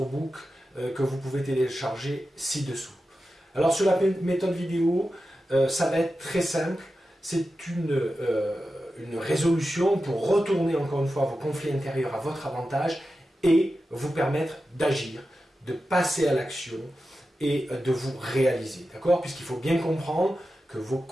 book que vous pouvez télécharger ci-dessous. Alors sur la méthode vidéo, ça va être très simple, c'est une résolution pour retourner encore une fois vos conflits intérieurs à votre avantage et vous permettre d'agir, de passer à l'action et de vous réaliser, d'accord? Puisqu'il faut bien comprendre que vos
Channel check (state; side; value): normal; both; correlation 0.92